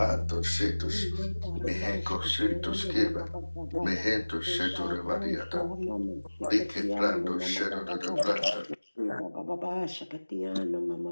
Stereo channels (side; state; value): both; inverted; correlation -1.00